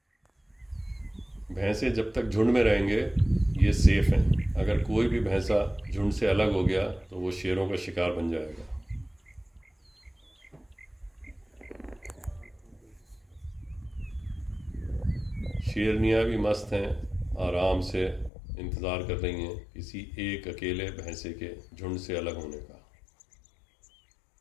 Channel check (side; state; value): right; drops out; at 18.3 s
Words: भैंसे जब तक झुंड में रहेंगे ये सेफ हैं। अगर कोई भी भैंसा झुंड से अलग हो गया तो वो शेरों का शिकार बन जाएगा। शेरनियाँ भी मस्त हैं, आराम से इंतज़ार कर रही हैं किसी एक अकेले भैंसे के झुंड से अलग होने का।